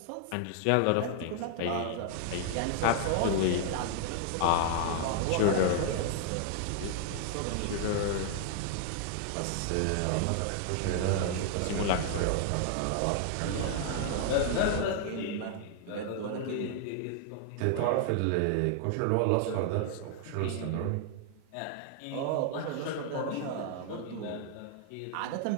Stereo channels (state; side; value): different; both; correlation -0.01